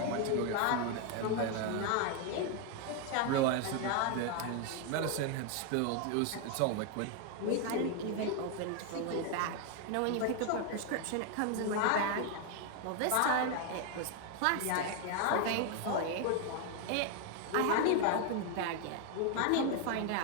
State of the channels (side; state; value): both; different; correlation 0.01